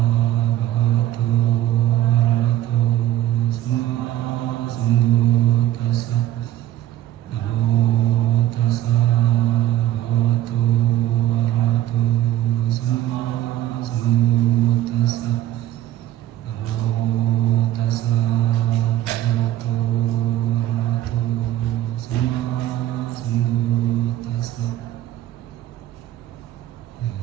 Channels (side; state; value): left; quieter; 13.1 dB